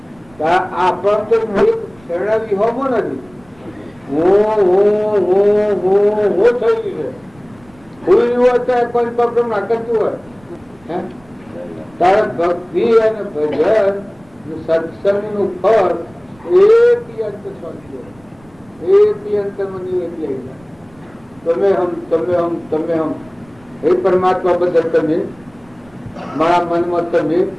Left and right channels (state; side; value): noise; right; rumble, 28 dB below the sound